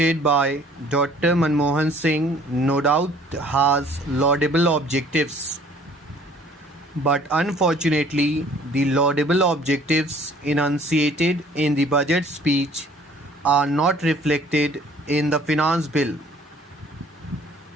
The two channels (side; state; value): both; normal; correlation 0.55